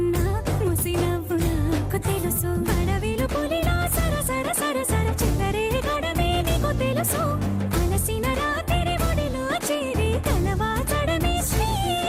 ముసినవ్వు నాకు తెలుసు అడవిలు పులిలా సరసర సరసర చిల్లరే గడమే నీకు తెలుసు అలసిన రాత్రి ఒడిలో చేరి కలవాచడమే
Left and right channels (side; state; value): both; identical; correlation 1.00